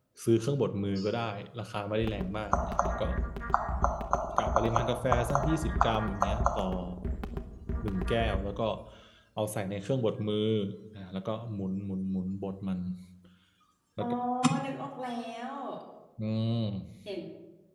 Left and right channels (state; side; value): identical; both; correlation 1.00